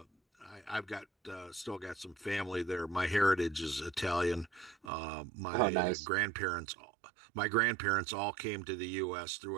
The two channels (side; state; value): left; drops out; at 4.9 s